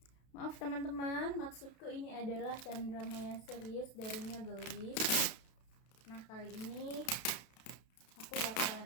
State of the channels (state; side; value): late; right; 32 ms